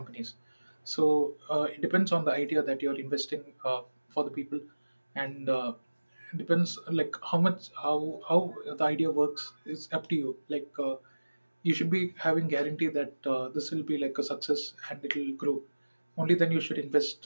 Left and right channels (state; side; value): inverted; both; correlation -1.00